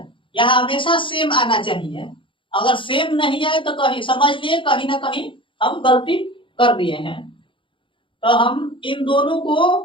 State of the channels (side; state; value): right; late; 0.25 ms